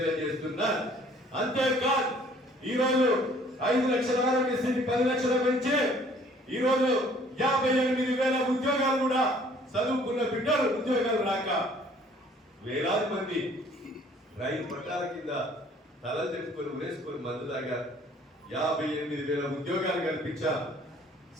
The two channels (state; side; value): normal; both; correlation 0.57